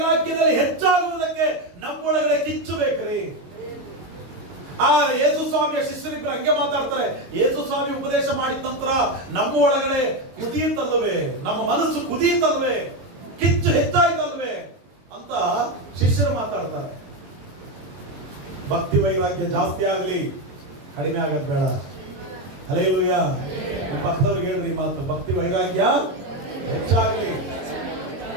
ಹೆಚ್ಚಾಗುವುದಕ್ಕೆ ನಮ್ಮೊಳಗಡೆ ಕಿಚ್ಚು ಬೇಕ್ರಿ. ಆ ಯೇಸು ಸ್ವಾಮಿಯ ಶಿಷ್ಯರಿಬ್ಬರು ಹಂಗೆ ಮಾತಾಡ್ತಾರೆ. ಯೇಸು ಸ್ವಾಮಿ ಉಪದೇಶ ಮಾಡಿದ ನಂತರ ನಮ್ಮ ಒಳಗಡೆ ಕುದೀತಲ್ವೇ, ನಮ್ಮ ಮನಸ್ಸು ಕುದೀತಲ್ವೇ, ಕಿಚ್ಚು ಹೆಚ್ಚಾಯ್ತಲ್ವೇ ಅಂತ ಶಿಷ್ಯರು ಮಾತಾಡ್ತಾರೆ. ಭಕ್ತಿ ವೈರಾಗ್ಯ ಜಾಸ್ತಿ ಆಗಲಿ, ಕಡಿಮೆ ಆಗದ್ ಬೇಡ. ಹಲ್ಲೆಲೂಯಾ. ಪಕ್ಕದವ್ರಿಗೆ ಹೇಳ್ರಿ ಮಾತು, ಭಕ್ತಿ ವೈರಾಗ್ಯ ಹೆಚ್ಚಾಗಲಿ,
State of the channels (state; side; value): late; left; 22 ms